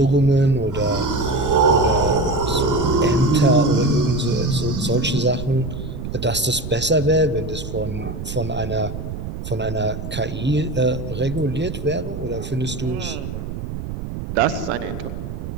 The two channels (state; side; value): noise; right; rumble, 7 dB below the sound